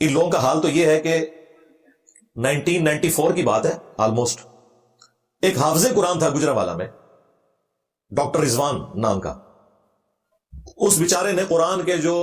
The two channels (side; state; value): both; identical; correlation 1.00